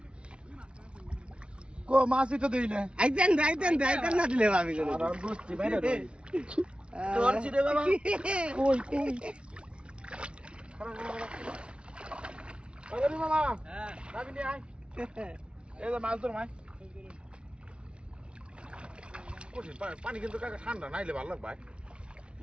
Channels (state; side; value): late; left; 0.058 ms